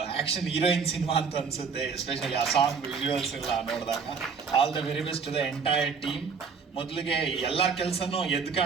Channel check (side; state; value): left; quieter; 5.6 dB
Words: ಆ್ಯಕ್ಷನ್ ಹೀರೋಯಿನ್ ಸಿನಿಮಾ ಅಂತ ಅನಿಸುತ್ತೆ, ಎಸ್ಪೆಷಲಿ ಆ ಸಾಂಗ್ ವಿಜುವಲ್ಸ್ ಎಲ್ಲ ನೋಡಿದಾಗ. All the very best to the entire team. ಮೊದಲಿಗೆ ಎಲ್ಲರ ಕೆಲಸನೂ ಎದ್ದು